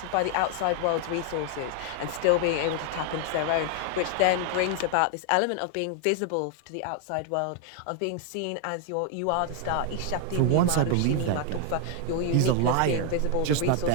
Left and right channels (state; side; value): different; both; correlation 0.00